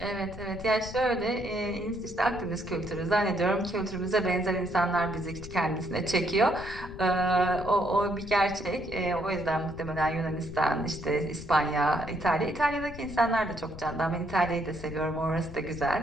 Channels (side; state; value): left; noise; rumble, 13 dB below the sound